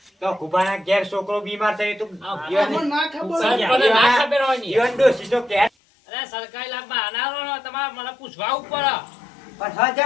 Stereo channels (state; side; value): drops out; right; at 5.7 s